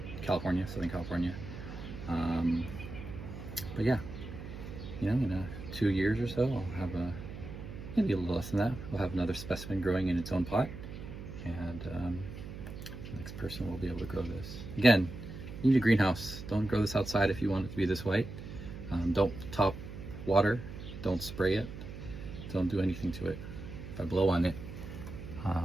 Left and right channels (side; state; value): right; noise; hum, 10 dB below the sound